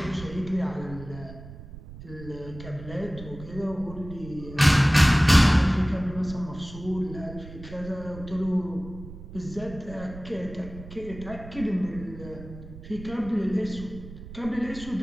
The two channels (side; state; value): right; noise; rumble, 14 dB below the sound